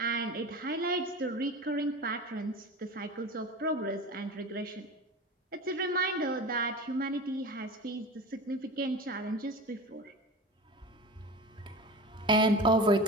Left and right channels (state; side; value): normal; both; correlation 0.32